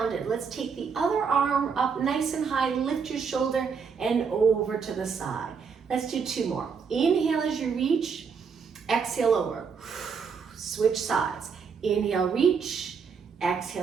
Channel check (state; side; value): quieter; left; 5.9 dB